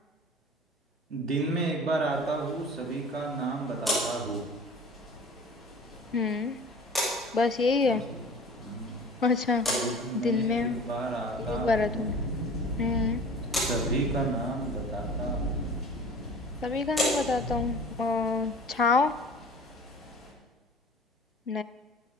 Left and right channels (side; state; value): both; normal; correlation 0.43